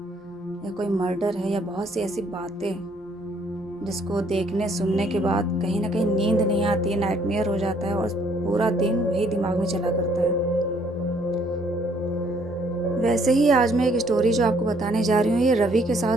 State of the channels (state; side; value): normal; both; correlation 0.64